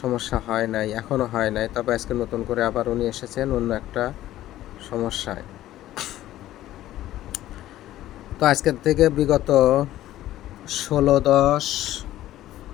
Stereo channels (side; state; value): right; quieter; 14.1 dB